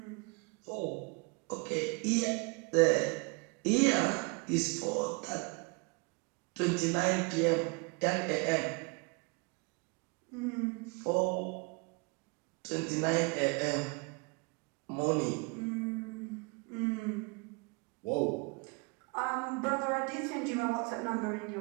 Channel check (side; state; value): left; quieter; 30.9 dB